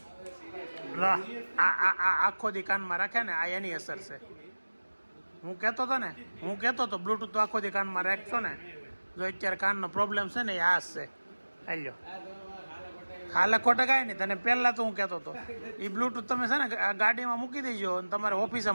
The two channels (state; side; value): inverted; both; correlation -1.00